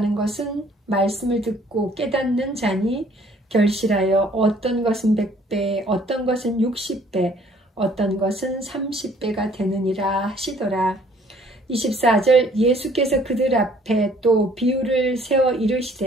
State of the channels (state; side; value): normal; both; correlation 0.59